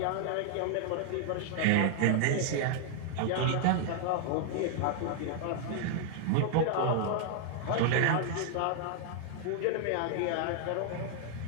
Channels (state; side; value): different; both; correlation 0.00